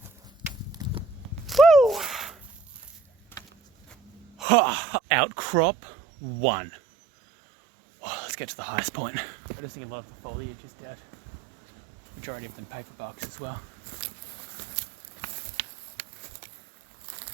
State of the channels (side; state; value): left; drops out; at 4.5 s